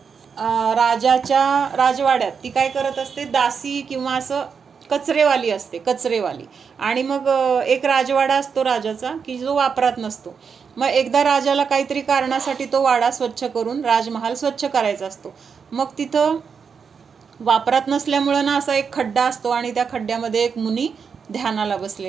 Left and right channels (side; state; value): left; quieter; 6.1 dB